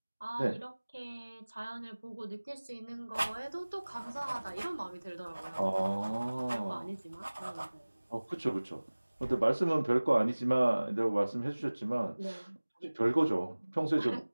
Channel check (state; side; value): inverted; both; correlation -1.00